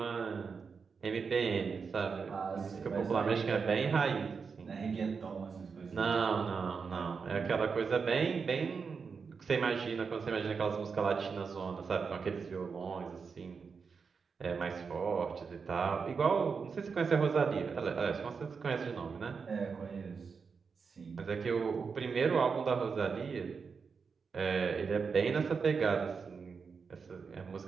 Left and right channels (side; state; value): left; quieter; 5.5 dB